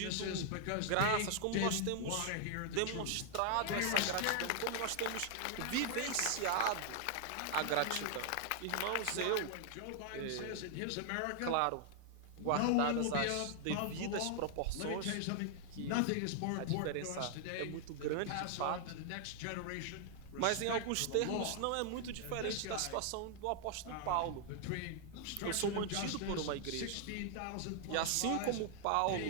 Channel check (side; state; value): both; different; correlation 0.00